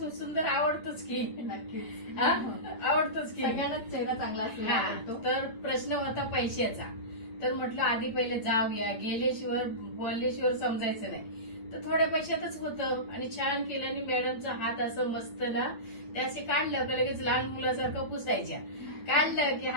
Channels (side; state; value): right; late; 8.4 ms